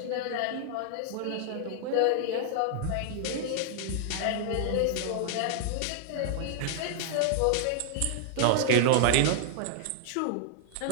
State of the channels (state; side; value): different; both; correlation 0.00